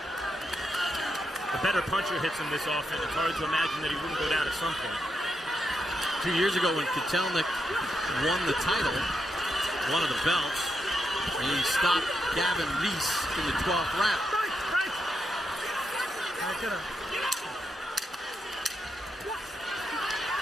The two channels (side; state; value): both; normal; correlation 0.82